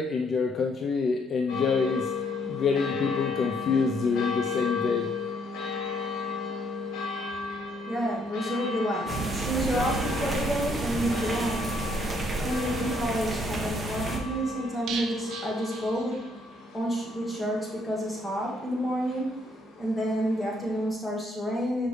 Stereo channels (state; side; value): normal; both; correlation 0.69